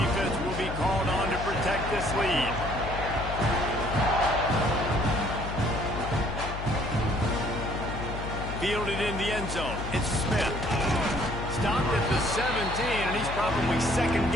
will be called on to protect this lead. Fielded in the end zone. It's Smith. Stopped at the 17, and he's probably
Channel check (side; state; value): left; noise; hum, 7 dB below the sound